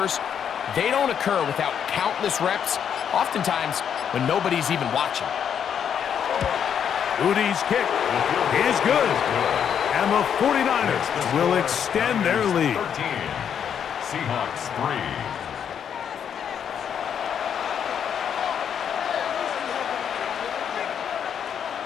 they don't occur without countless reps, oftentimes when nobody's even watching. Udi's kick is good, and the 49ers will extend their lead. 13. Seahawks 3.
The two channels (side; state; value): right; quieter; 8.2 dB